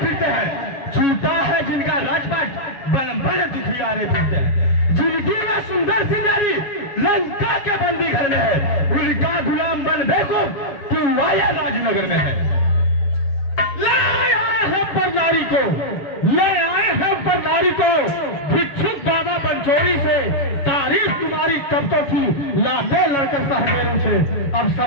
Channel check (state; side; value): late; right; 7.2 ms